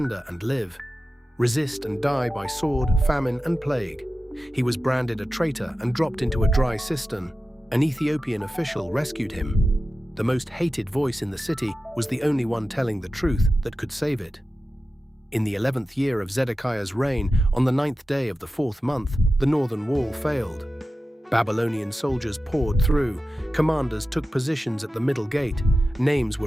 and live. Resist and die by sword, famine, and plague. He was branded a traitor and dropped into a dry cistern. An Ethiopian official rescued him. The most hated voice in the city was the only one telling the truth that could save it. In the 11th year of Zedekiah's reign, on the 9th day of the 4th month, the northern wall failed. Babylonian soldiers poured through. Commanders took positions at the middle gate. Names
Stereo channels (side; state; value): both; normal; correlation 0.93